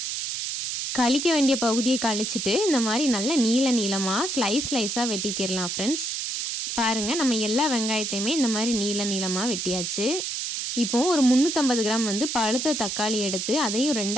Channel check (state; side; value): noise; right; hiss, 3 dB below the sound